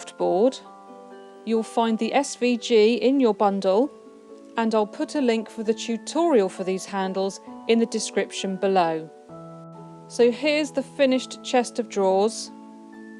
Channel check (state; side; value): identical; both; correlation 1.00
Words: you'll find the SVG in your bundle, and I'll put a link for the tutorial for these handles in the description below. So here's the finished chest of drawers.